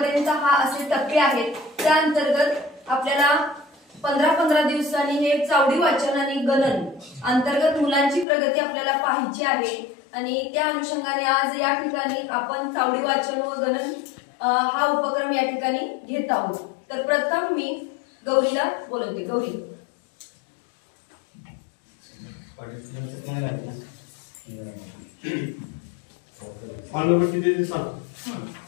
हा असे टप्पे आहेत। त्या अंतर्गत आपल्याला 15-15 दिवसांनी हे चावडी वाचन आणि गणन अंतर्गत मुलांची प्रगती आपल्याला पाहायची आहे आणि त्या अनुषंगाने आज या ठिकाणी आपण चावडी वाचन व गणन हा उपक्रम या ठिकाणी घेत आहोत। तर प्रथम मी गौरीला बोलवते। गौरी,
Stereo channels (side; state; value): right; drops out; at 8.2 s